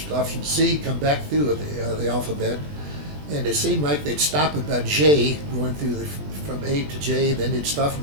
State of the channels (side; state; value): left; late; 20 ms